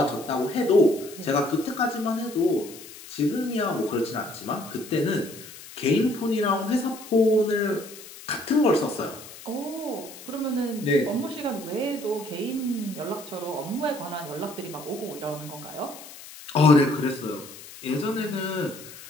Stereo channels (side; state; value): left; noise; hiss, 16 dB below the sound